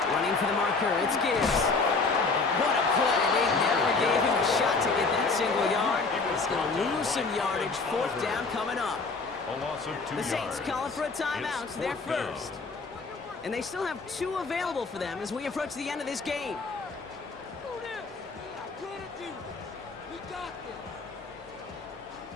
Running for the marker, it's Gibbs. What a play. They never gave him a shot to get that single yard. He's going to lose some yardage. 4th down coming up. A loss of 2 The Saints yards. calling for a timeout. It's They're 4th down. first. And they still have 2 available for them as we approach the end of this game.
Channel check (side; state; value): right; quieter; 4.1 dB